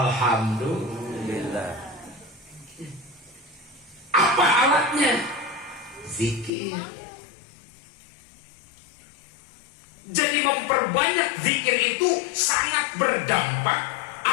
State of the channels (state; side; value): drops out; right; at 6.5 s